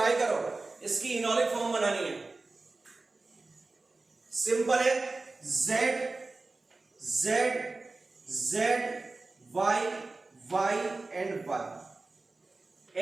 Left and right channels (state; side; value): quieter; left; 3.4 dB